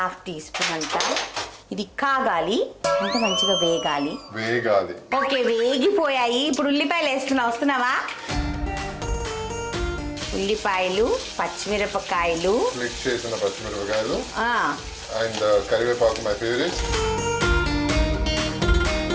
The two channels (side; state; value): both; identical; correlation 1.00